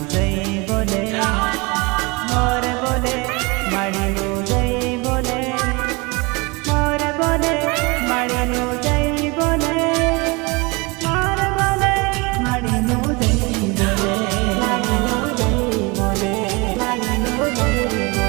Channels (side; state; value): left; quieter; 26.9 dB